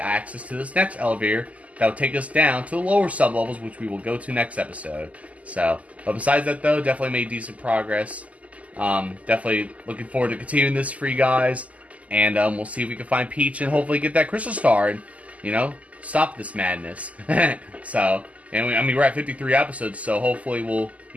access to this next elevator that will take us down to the lower sublevels, which we will go to next episode. So, but besides that though, definitely made decent progress. Definitely looking forward to continuing this for you guys. And we'll see if we can find Peach and hopefully get that crystal star and, you know, stop this madness. So, and we're at 53 episodes, so hopefully we'll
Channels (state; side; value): late; left; 0.071 ms